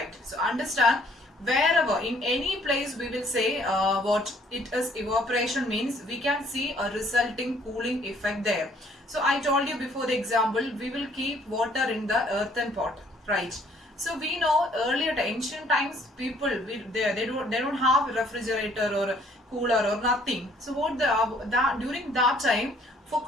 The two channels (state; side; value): normal; both; correlation 0.61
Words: So understand, wherever in any place we will say what it is evaporation means, we can see a resulting cooling effect there. So I told you before the example, we will keep water in the earthen pot, right? So we know earlier ancient times people they don't have refrigerator or cooler or nothing. So what during that time, for